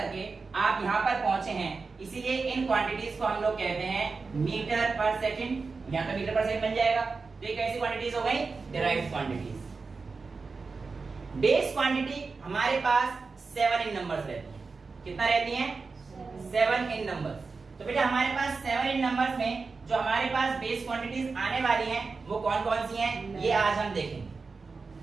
आप यहां पर पहुंचे हैं, इसीलिए इन क्वांटिटीज को हम लोग कहते हैं मीटर पर सेकंड। यहां पर मीटर पर सेकंड बन जाएगा। तो ये कैसी क्वांटिटीज हो गई? Derived quantities. बेस क्वांटिटी हमारे पास 7 इन नंबर्स रहती है। कितना रहती हैं? 7 इन नंबर्स। तो बेटा हमारे पास 7 इन नंबर्स में जो हमारे पास बेस क्वांटिटीज आने वाली हैं वो कौन कौन सी हैं, ये आज हम देखेंगे,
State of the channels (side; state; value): left; quieter; 4.4 dB